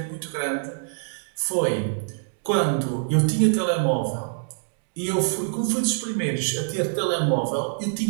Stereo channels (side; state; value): left; silent; digital silence